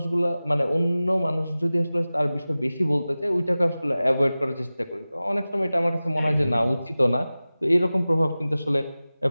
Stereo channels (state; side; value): inverted; both; correlation -0.97